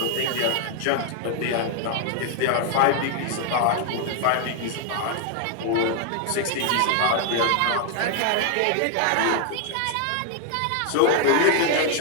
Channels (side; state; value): both; different; correlation 0.00